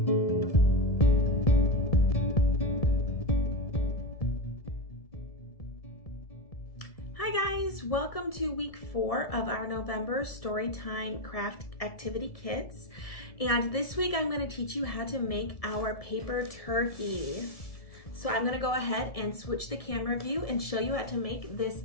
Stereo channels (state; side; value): late; right; 1.7 ms